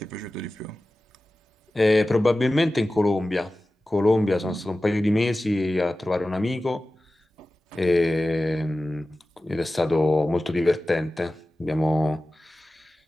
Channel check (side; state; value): both; normal; correlation 0.95